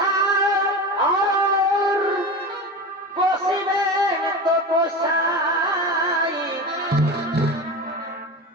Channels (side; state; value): both; normal; correlation 0.27